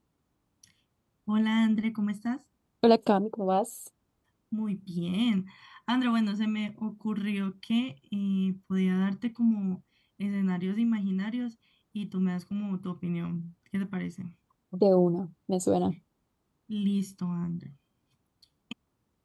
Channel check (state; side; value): identical; both; correlation 1.00